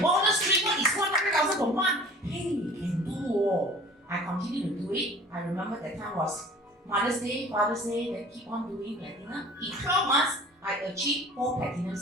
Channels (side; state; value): both; normal; correlation 0.46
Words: dream. What is 100,000 per month? Hey, can do. I continue to do it. I remember that time was Mother's Day, Father's Day, then keep on doing platinum. In 12 months, I achieved 4